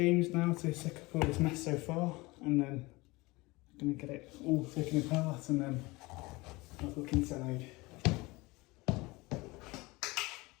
now to suck up all this mess so far, and then I'm going to get it all taken apart and then have a look inside.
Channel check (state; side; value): quieter; right; 22.9 dB